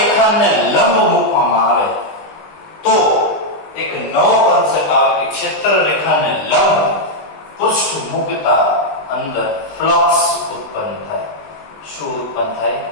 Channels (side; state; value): right; late; 20 ms